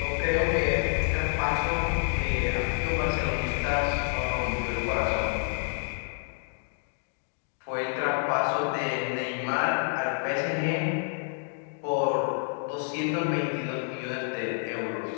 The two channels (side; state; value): right; silent; 59 dB below the other